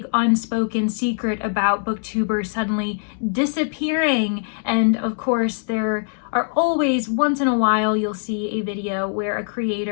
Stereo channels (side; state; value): right; silent; digital silence